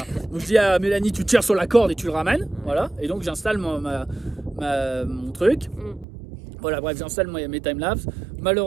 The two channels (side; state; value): left; drops out; at 6.1 s